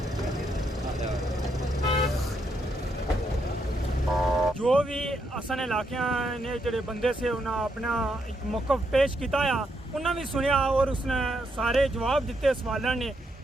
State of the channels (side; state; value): both; normal; correlation 0.79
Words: जो भी असन इलाके ने जेडे बंदे से उन्हें अपना एक मौकफ पेश किया, उन्हें भी सुनिया और उसने सारे जवाब दिते सवालों ने